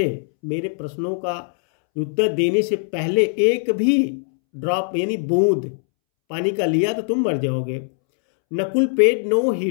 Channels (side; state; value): right; silent; 65 dB below the other